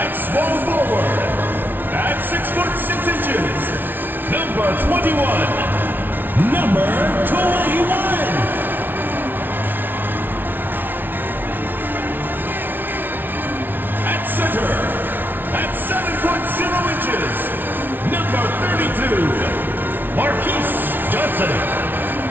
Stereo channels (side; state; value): left; late; 0.094 ms